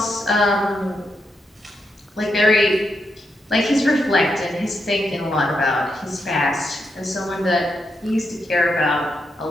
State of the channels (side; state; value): both; normal; correlation 0.83